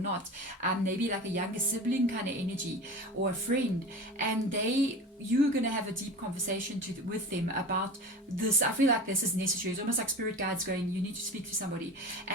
Maybe like a younger sibling kind of energy, or a friend. And you're going to have a deep conversation with them about this. I feel like this is necessary. It's almost like spirit guides going, you need to speak to somebody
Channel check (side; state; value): both; normal; correlation 0.32